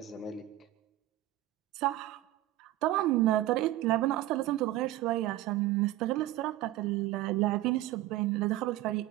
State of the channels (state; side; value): quieter; left; 15.3 dB